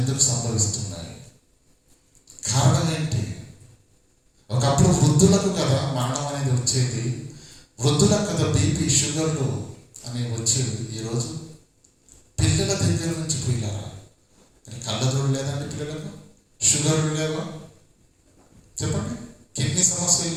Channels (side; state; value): both; identical; correlation 1.00